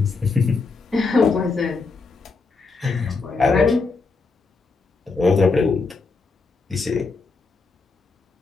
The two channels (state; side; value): quieter; right; 4.1 dB